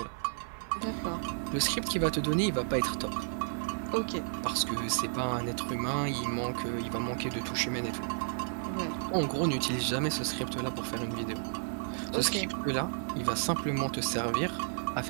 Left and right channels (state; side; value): silent; left; digital silence